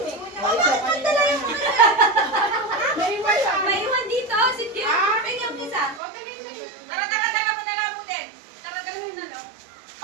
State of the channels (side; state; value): left; drops out; at 6.0 s